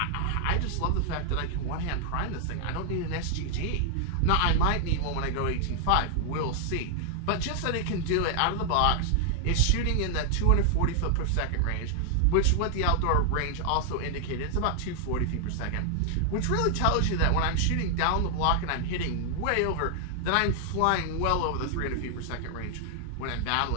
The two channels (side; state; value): both; different; correlation 0.00